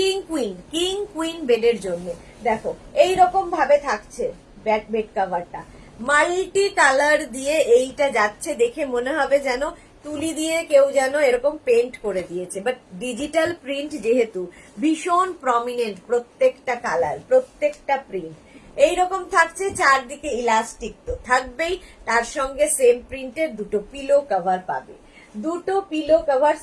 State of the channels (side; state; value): both; identical; correlation 1.00